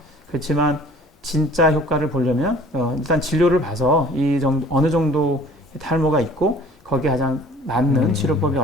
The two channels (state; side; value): normal; both; correlation 0.50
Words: 그렇지만 진짜 효과를 보려면 일단 진료를 봐서 이 정도 어느 정도 탈모가 있고 거기에 가장 맞는 치료법이